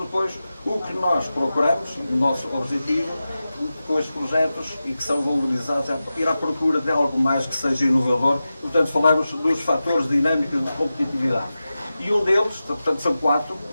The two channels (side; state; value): both; inverted; correlation -0.94